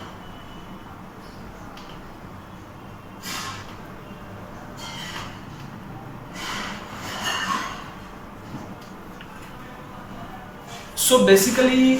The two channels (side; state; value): both; identical; correlation 1.00